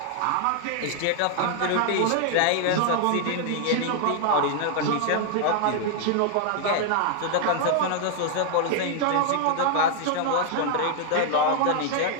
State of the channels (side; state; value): both; different; correlation 0.00